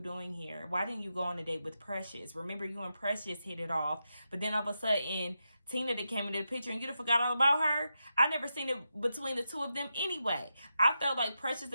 here? Why didn't you go on a date with Precious? Remember, you and Precious hit it off. But then all of a sudden, Tina that came into the picture and you forgot all about her. I never seen it between the two of them anyway. I felt like Precious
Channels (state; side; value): inverted; both; correlation -0.87